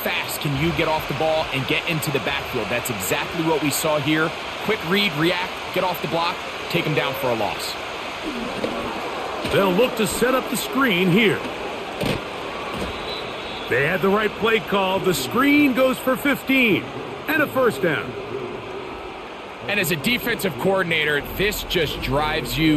can you get off the ball and get into the backfield? That's exactly what we saw here. Quick read, react, get off the block, take him down for a loss. They'll look to set up the screen here. They had the right play call. The screen goes for 15 and a 1st down. And as a defensive coordinator, this just drives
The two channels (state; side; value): identical; both; correlation 1.00